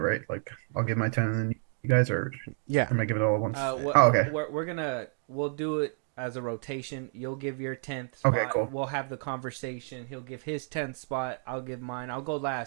Like I'll give my 10 and then you guys are Yeah. I'm gonna give it all at once. Okay. Okay. We'll do it as a rotation. You'll give your 10th spot. Okay, cool. We'll have the conversation. He'll give his 10th spot. I'll give mine. I'll go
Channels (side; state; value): left; silent; 58 dB below the other